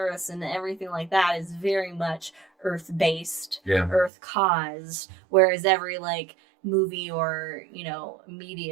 and everything like that is very much Earth based, Yeah. Earth caused, whereas every like movie or, you know,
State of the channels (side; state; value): left; drops out; at 4.1 s